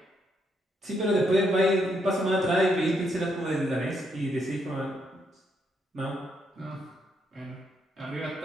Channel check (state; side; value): normal; both; correlation 0.76